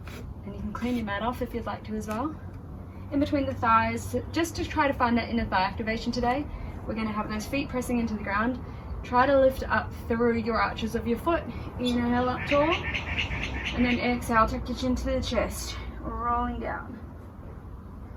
and you can clean your mat off if you'd like to as well. In between the thighs, just to try to find that inner thigh activation today. We're going to have those feet pressing into the ground. Try to lift up through your arches of your foot. Inhale up tall, and then exhale, tuck your chin to the chest, rolling down.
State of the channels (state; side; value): identical; both; correlation 1.00